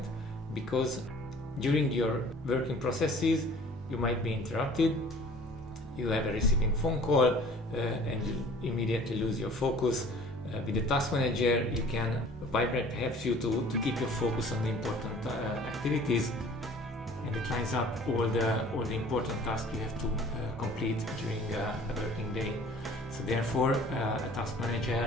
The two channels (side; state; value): both; normal; correlation 0.50